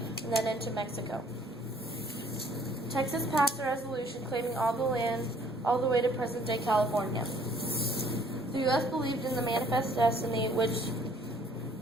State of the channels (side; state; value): both; normal; correlation 0.60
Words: then into Mexico. Texas passed a resolution claiming all the land all the way to present-day California. The U.S. believed in the Manifest Destiny, which